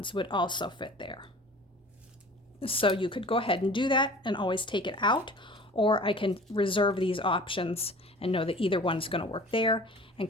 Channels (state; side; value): normal; both; correlation 0.44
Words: would also fit there. So you could go ahead and do that and always take it out, or I can reserve these options and know that either one's going to work there and